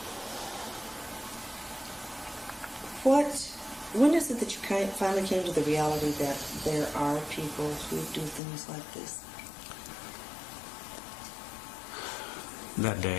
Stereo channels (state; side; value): drops out; right; at 8.4 s